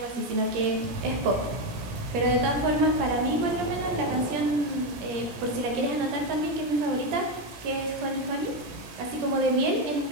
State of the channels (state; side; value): late; left; 17 ms